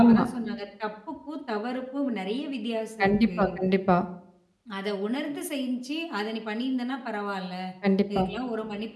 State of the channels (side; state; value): both; identical; correlation 1.00